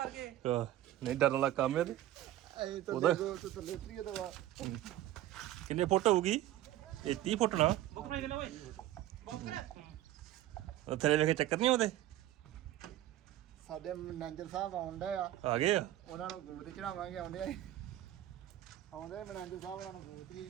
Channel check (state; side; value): quieter; left; 13.7 dB